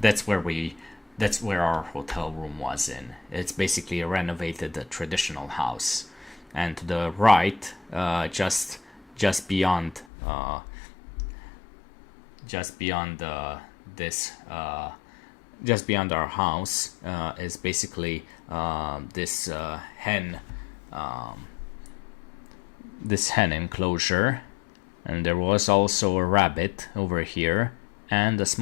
our hotel room was in. It's basically a renovated traditional house. And to the right, just beyond our house is basically this hen enclosure, and there was also a rabbit over here and a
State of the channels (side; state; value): right; drops out; at 10.1 s